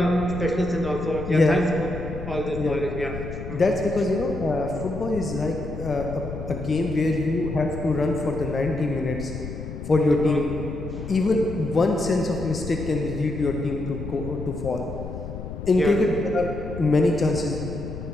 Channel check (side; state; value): left; noise; rumble, 9 dB below the sound